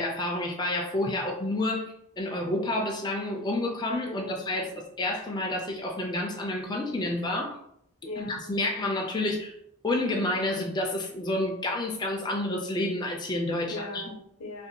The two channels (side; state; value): both; normal; correlation 0.35